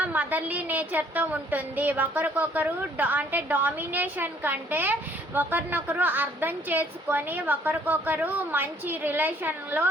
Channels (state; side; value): normal; both; correlation 0.62